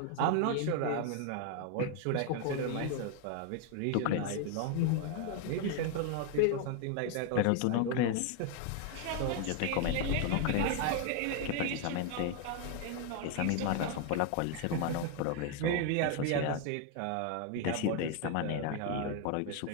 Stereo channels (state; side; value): different; both; correlation 0.01